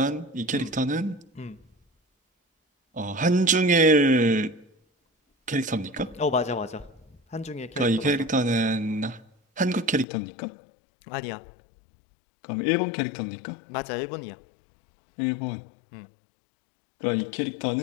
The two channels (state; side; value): drops out; right; at 10.1 s